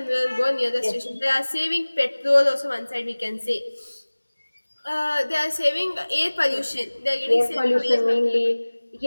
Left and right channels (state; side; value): inverted; both; correlation -1.00